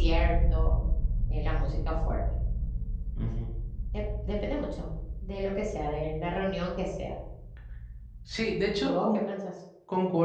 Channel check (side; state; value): both; identical; correlation 1.00